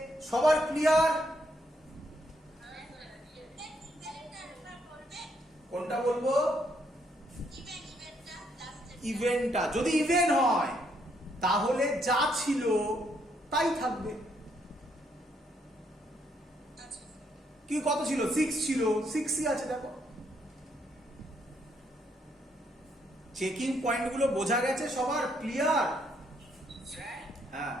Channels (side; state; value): both; normal; correlation 0.73